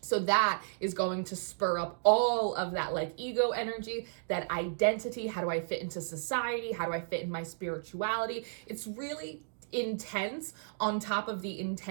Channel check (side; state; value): left; silent; digital silence